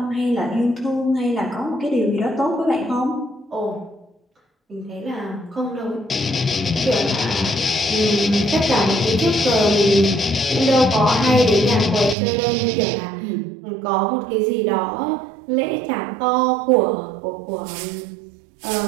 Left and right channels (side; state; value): left; drops out; at 12.2 s